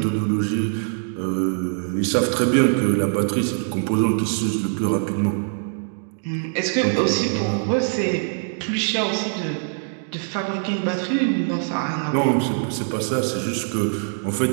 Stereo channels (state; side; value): silent; left; digital silence